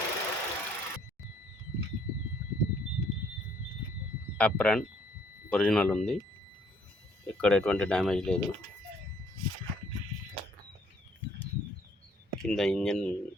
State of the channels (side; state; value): both; normal; correlation 0.64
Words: అప్రాన్ ఒరిజినల్ ఉంది, ఇక్కడ ఎటువంటి డ్యామేజ్ లేదు. కింద ఇంజిన్